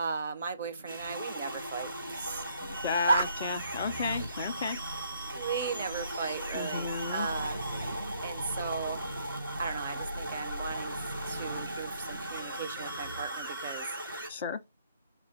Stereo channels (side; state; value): both; inverted; correlation -0.67